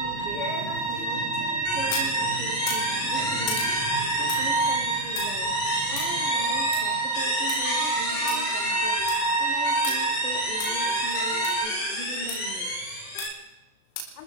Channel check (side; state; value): right; late; 36 ms